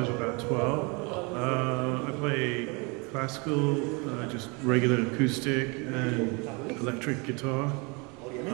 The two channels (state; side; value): quieter; left; 29.8 dB